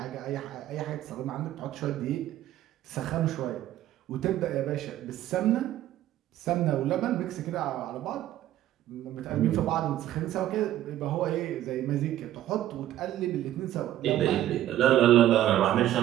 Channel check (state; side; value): quieter; left; 13.1 dB